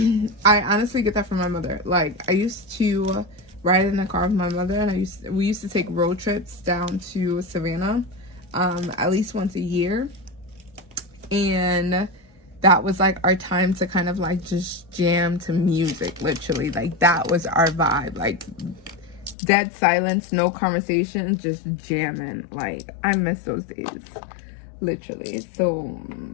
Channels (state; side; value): drops out; right; at 19.4 s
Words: I honestly get that from my mother. Like, I used to ride in the car with my mother, and we used to take road trips down to Savannah at least once a year. And that was like our time to kind of like just jam to music, literally. Like, that was our vibe. Like, dead silence, no conversation, just jamming. Like, I miss those days, literally. So